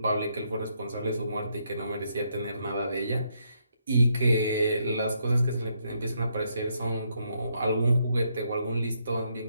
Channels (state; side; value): inverted; both; correlation -0.76